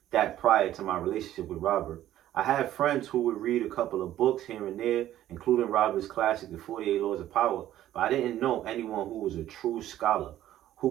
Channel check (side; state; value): left; quieter; 13.0 dB